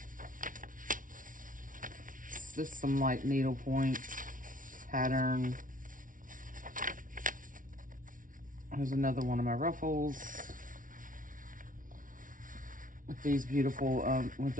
Just some like needlepoint pattern. Here's another one of my ruffles with these beautiful one of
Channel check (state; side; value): late; left; 0.38 ms